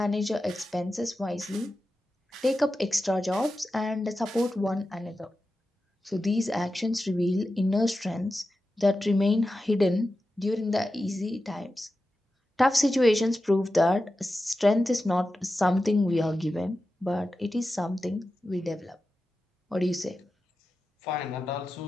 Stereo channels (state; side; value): normal; both; correlation 0.92